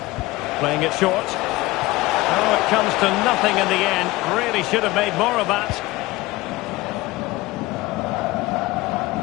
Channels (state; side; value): quieter; right; 20.1 dB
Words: Playing it short. Oh, it comes to nothing in the end. Really should have made more of that.